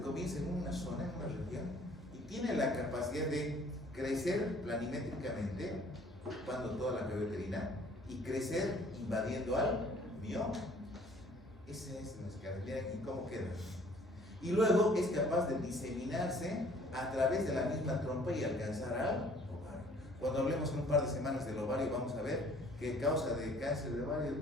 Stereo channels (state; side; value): normal; both; correlation 0.56